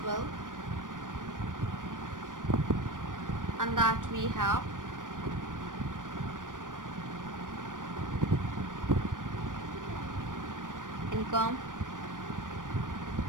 well. And that we have income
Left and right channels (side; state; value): left; late; 0.88 ms